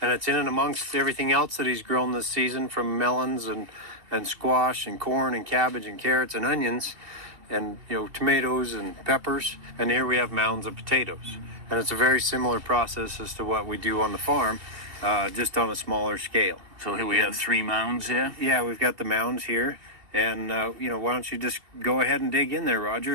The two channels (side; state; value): left; late; 2.5 ms